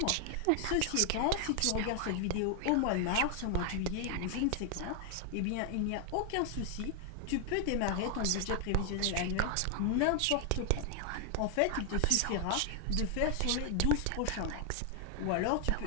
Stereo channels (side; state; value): both; different; correlation 0.00